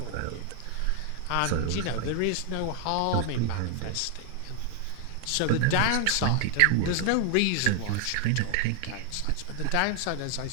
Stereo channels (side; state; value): both; different; correlation 0.00